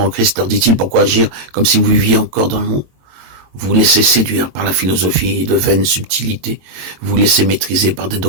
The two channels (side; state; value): left; late; 22 ms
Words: Christ, leur dit-il, pourquoi agir comme si vous viviez encore dans le monde? Vous vous laissez séduire par la philosophie de vaines subtilités. Vous vous laissez maîtriser par des